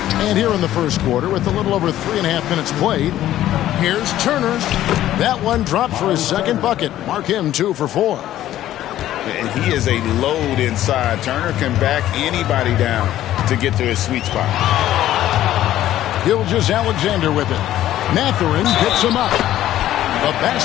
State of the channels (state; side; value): quieter; right; 13.1 dB